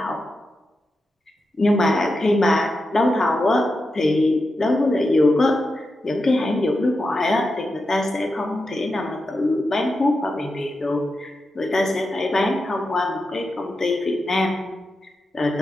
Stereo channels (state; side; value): normal; both; correlation 0.89